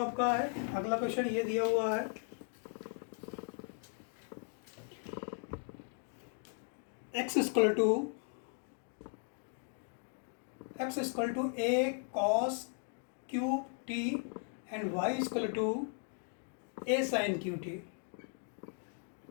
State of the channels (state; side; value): silent; right; 53 dB below the other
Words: आपका है? अगला क्वेश्चन ये दिया हुआ है x equal to a cos cube t and y equal to a sin QT,